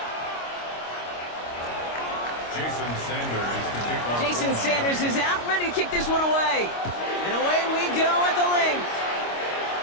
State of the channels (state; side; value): late; right; 25 ms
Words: Jason Sanders is out, ready to kick this one away. And away we go at the link.